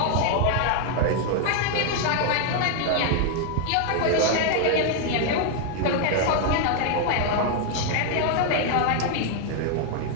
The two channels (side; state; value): both; different; correlation 0.00